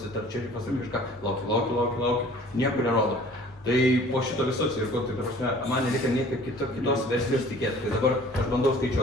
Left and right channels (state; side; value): normal; both; correlation 0.50